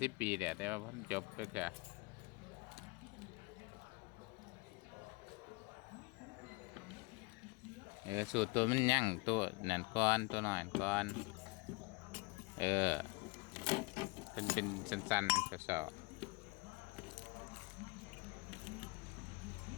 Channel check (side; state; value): right; quieter; 26.7 dB